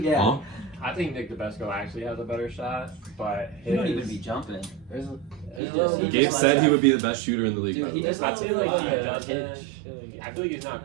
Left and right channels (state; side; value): drops out; left; at 5.6 s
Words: Yeah. I think Nick DeBesco actually has a better shot, but He don't even be jumping. Gabe said he would be the best shooter in the league. Dude, I feel like he doesn't. pitch. I feel like he's